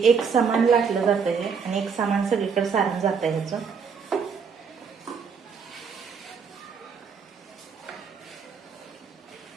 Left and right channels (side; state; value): left; quieter; 6.0 dB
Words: एक समान लाटलं जातं हे आणि एक समान सगळीकडे सारण जातं ह्याचं.